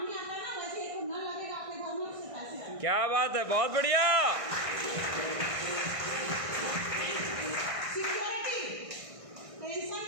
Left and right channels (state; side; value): late; left; 1.6 ms